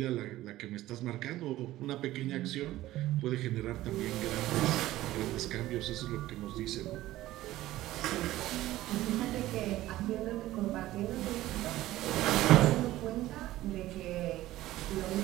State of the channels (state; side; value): quieter; left; 15.7 dB